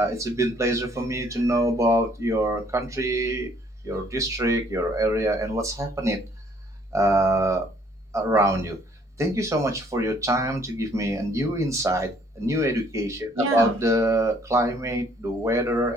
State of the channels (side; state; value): both; normal; correlation 0.62